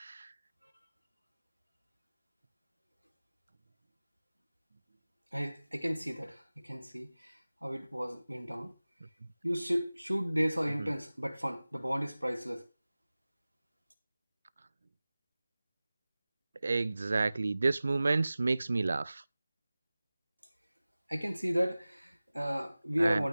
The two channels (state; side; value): inverted; both; correlation -0.98